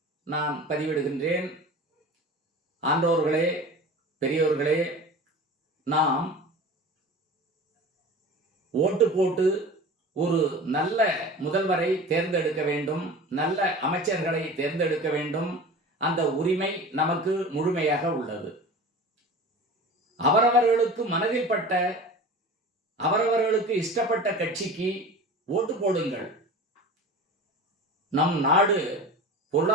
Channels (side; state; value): both; normal; correlation 0.36